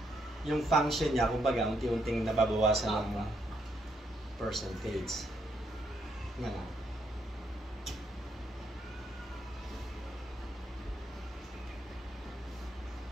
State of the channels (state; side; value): normal; both; correlation 0.75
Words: Yung function niya, kumbaga, unti-unting nababawasan ng percentage. Nga nga.